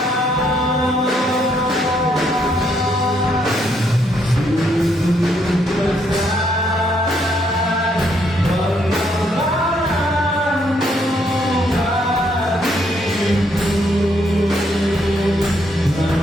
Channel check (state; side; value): normal; both; correlation 0.72